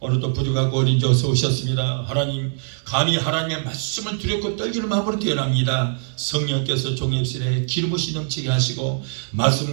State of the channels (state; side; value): silent; left; digital silence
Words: 부족하고 어린 자 어서 오셨습니다. 하나님, 감히 하나님의 말씀을 두렵고 떨기는 마음으로 태어납니다. 성령께서 종역실에 기름 부으시 넘치게 하시고